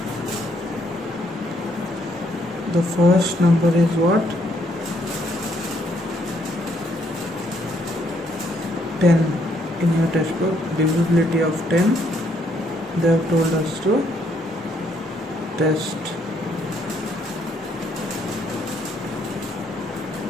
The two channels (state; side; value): normal; both; correlation 0.71